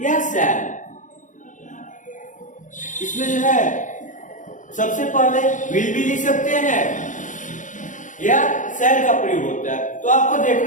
या शैल। इसमें जो है सबसे पहले विल भी लिख सकते हैं या शैल का प्रयोग होता है। तो आपको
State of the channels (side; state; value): right; late; 0.37 ms